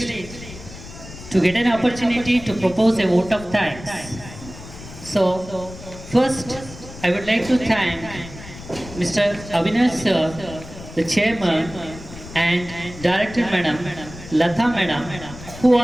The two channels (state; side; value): noise; left; rumble, 15 dB below the sound